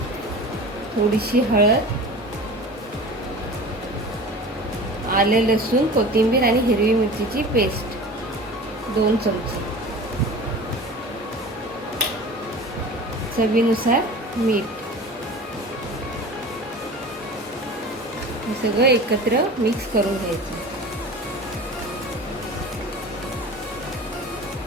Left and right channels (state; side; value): normal; both; correlation 0.37